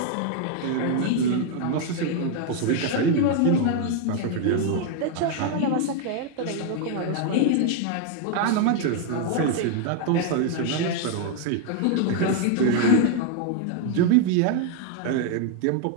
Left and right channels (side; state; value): both; different; correlation 0.00